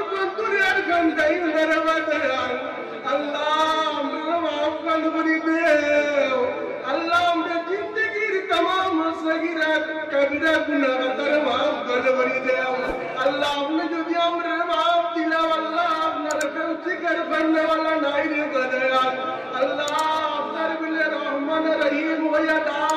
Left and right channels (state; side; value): identical; both; correlation 1.00